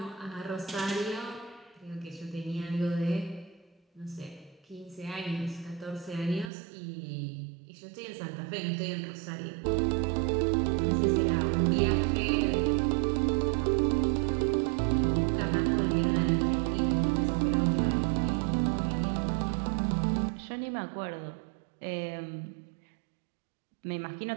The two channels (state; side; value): drops out; left; at 6.5 s